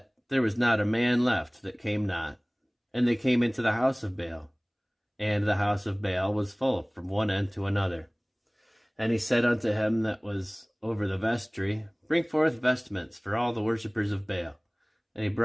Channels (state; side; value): identical; both; correlation 1.00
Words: there was not a man left that came not. And they came into the house of Baal, and the house of Baal was full from one end to another. And he said unto him that was over the vestry, Bring forth vestments for all the worshippers of Baal. And he